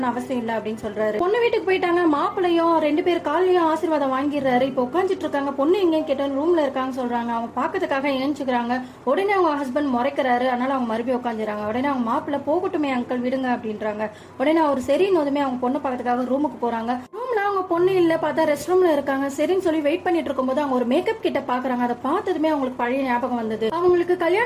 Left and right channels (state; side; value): identical; both; correlation 1.00